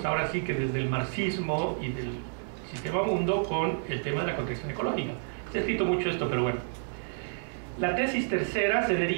ahora sí que desde el marxismo y del sistema mundo con el tema de la contradicción ecológica. Se ha escrito mucho esto, pero bueno. La tesis tercera se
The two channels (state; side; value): silent; left; digital silence